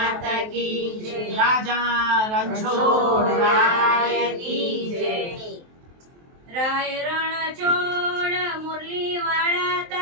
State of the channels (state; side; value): late; left; 23 ms